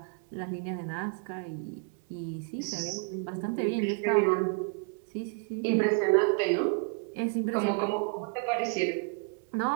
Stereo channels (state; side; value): quieter; left; 37.9 dB